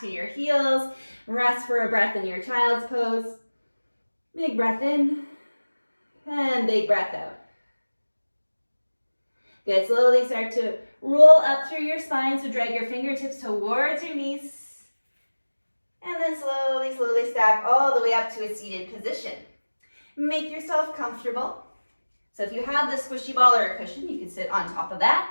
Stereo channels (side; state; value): both; inverted; correlation -1.00